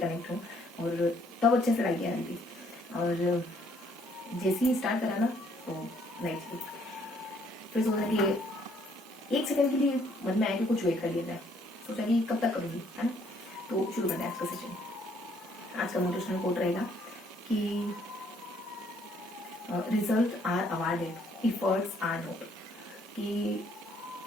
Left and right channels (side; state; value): both; normal; correlation 0.66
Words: हूँ, और तब अच्छे से लाइक आ रही थी, और जैसे ही स्टार्ट करा ना तो नहीं चली। फिर सोचा कि 1 सेकंड के लिए मन में आया कि कुछ वेट कर लिया जाए। सोचा कि कब तक करूँगी, है ना। तो शुरू करते हैं आज का सेशन। आज का मोटिवेशनल कोट रहेगा कि result are awarded, efforts are not. कि